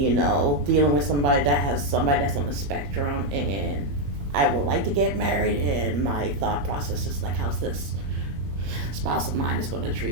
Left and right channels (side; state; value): left; late; 21 ms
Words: with somebody that's on the spectrum, and I would like to get married, and my thought process is like, how's this spouse of mine is going to